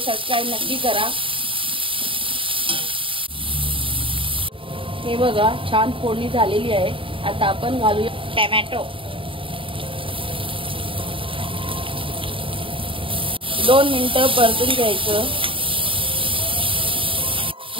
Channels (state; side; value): late; left; 0.25 ms